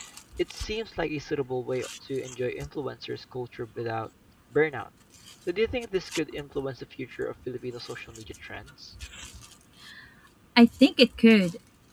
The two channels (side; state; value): both; identical; correlation 1.00